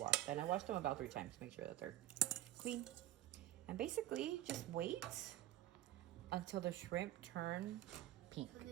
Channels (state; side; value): quieter; left; 14.1 dB